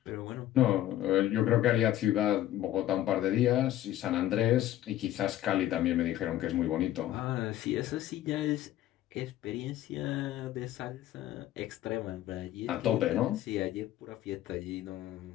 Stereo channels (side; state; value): right; quieter; 13.4 dB